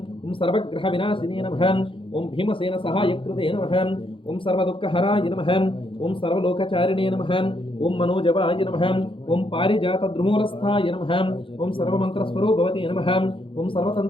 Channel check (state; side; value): late; right; 0.25 ms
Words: ఓం సర్వగ్రహ వినాశినే నమః. ఓం భీమసేన సహాయకృతే నమః. ఓం సర్వదుఃఖహరాయ నమః. ఓం సర్వలోకచారిణే నమః. ఓం మనోజవాయ నమః. ఓం పారిజాత ద్రుమూలస్థాయ నమః. ఓం సర్వమంత్రస్వరూపవతే నమః. ఓం